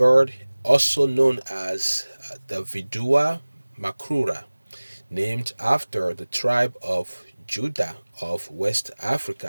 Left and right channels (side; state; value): both; inverted; correlation -1.00